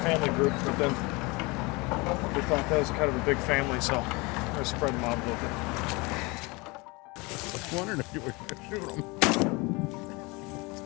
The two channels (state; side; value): quieter; right; 26.0 dB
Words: family group, but then we thought that was kind of a big family, so I spread them out a little bit. I was wondering if you were going to shoot them.